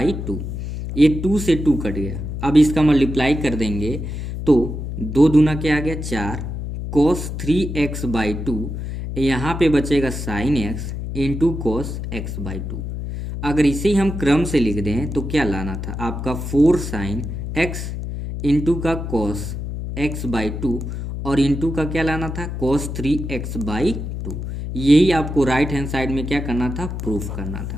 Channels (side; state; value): left; noise; hum, 5 dB below the sound